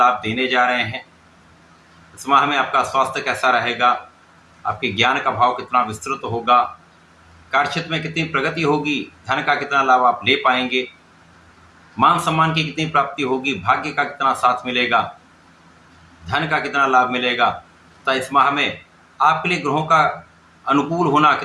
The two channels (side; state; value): both; identical; correlation 1.00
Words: देने जा रहे हैं। इस माह में आपका स्वास्थ्य कैसा रहेगा, आपके ज्ञान का भाव कितना विस्तृत होगा, कार्यक्षेत्र में कितनी प्रगति होगी, धन का कितना लाभ आप ले पाएंगे, मान सम्मान की कितनी प्राप्ति होगी, भाग्य का कितना साथ मिलेगा, धन का कितना लाभ मिलेगा तथा इस माह में आपके लिए ग्रहों का अनुकूल होना